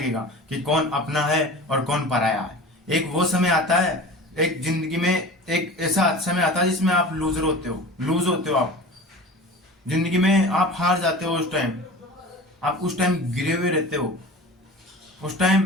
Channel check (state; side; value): normal; both; correlation 0.37